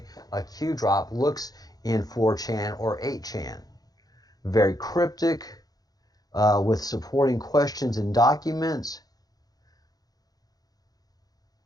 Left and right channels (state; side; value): late; right; 0.19 ms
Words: a Q drop looks in 4chan or 8chan. Very cryptic, with supporting questions and documents.